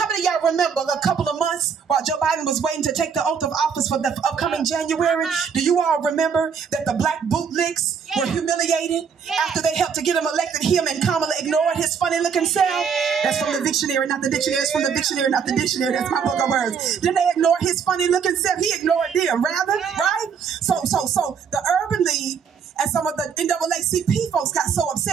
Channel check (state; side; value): quieter; left; 6.7 dB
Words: many of y'all remember a couple of months while Joe Biden was waiting to take the oath of office for the upcoming January? Do you all remember that the black bootlicks were humiliated after they helped to get him elected? Him and Kamala ignored his funny looking self. That's from the dictionary, not the dictionary. It's from the dictionary, not the dictionary. That's my book of words. Didn't they ignore his funny looking self? He ignored them, rather, right? So the Urban League and some of the NAACP folks got so